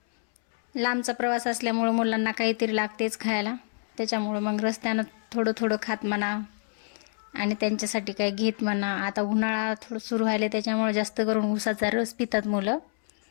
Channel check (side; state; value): right; silent; 60 dB below the other